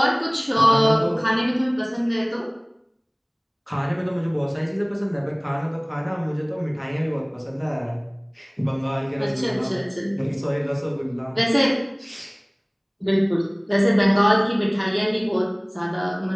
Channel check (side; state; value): both; identical; correlation 1.00